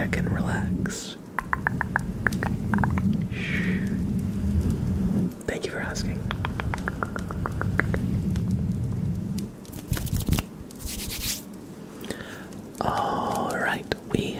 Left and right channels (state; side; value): identical; both; correlation 1.00